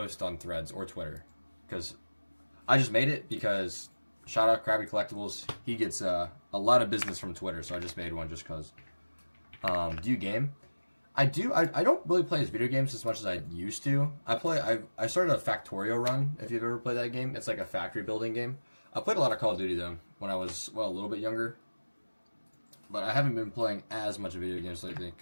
on Threads or Twitter because I just made it because shout out Krabby Collectibles. He gets a lot of business from Twitter, so I just made one just because. Do you game? I do. I don't really play video games as much as I used to. I started a Factorio run, if you've ever played that game. It's like a factory building game. I played a lot of Call of Duty, though, when I was, a little bit younger. But I haven't been playing as much video games lately,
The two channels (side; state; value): both; inverted; correlation -1.00